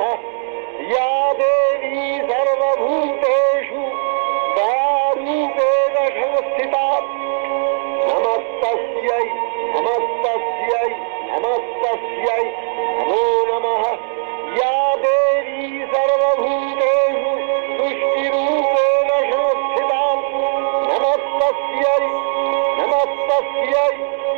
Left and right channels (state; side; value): silent; left; digital silence